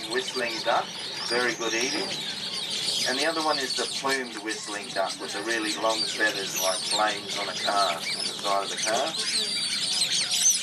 whistling duck, very good eating. And the other one is the plumed whistling duck with the really long feathers like flames on a car, on the side of the car.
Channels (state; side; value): identical; both; correlation 1.00